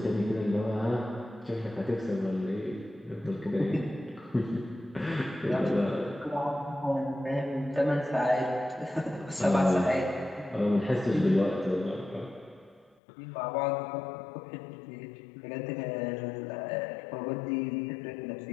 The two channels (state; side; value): drops out; right; at 13.0 s